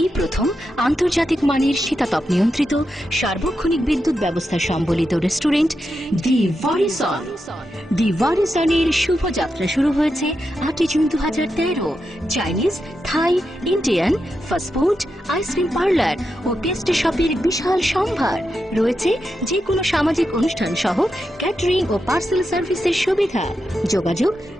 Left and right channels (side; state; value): both; normal; correlation 0.87